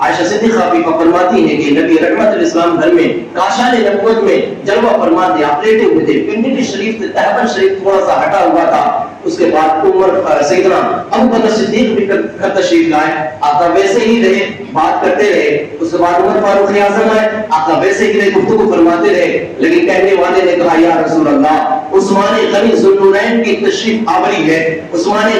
صدیقہ بھی فرماتی ہے کہ نبی رحمت الاسلام گھر میں کاشان نبوت میں جلوہ فرما تھے، آپ لیٹے ہوئے تھے، پنڈلی شریف سے تہبند شریف تھوڑا سا ہٹا ہوا تھا، اس کے بعد عمر سیدنا ابو بکر صدیق بھی گھر تشریف لائے، آقا ویسے ہی رہے، بات کرتے رہے، اس کے بعد عمر فاروق اعظم آئے، آقا ویسے ہی رہے، گفتگو فرماتے رہے، لیکن کہنے والے نے کہا یا رسول اللہ عثمان غنی ذوالنورین کی تشریف آوری ہے، عثمان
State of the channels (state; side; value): identical; both; correlation 1.00